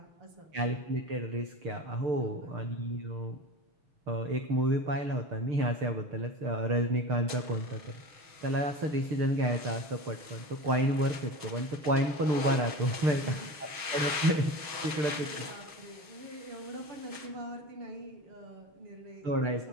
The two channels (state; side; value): late; left; 6.4 ms